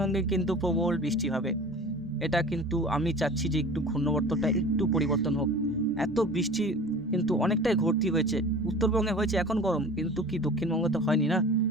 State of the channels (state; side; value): normal; both; correlation 0.40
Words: কিন্তু প্রবল বৃষ্টি হবে। এটা কিন্তু আমি চাচ্ছি যে একটু ঘূর্ণবর্তটা একটু পরিবর্তন হোক। এত বৃষ্টি কিন্তু অনেকটাই ঘটতি হয়েছে, উত্তরবঙ্গে হয়েছে এখন গরম, কিন্তু কি দক্ষিণবঙ্গে তো হয়নি না।